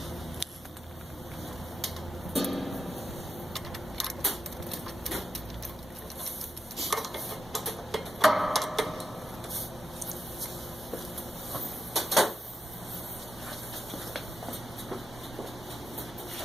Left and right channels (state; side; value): normal; both; correlation 0.88